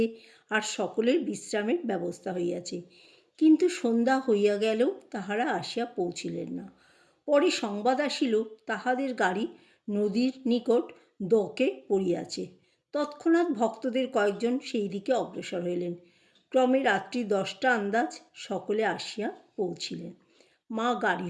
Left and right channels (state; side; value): identical; both; correlation 1.00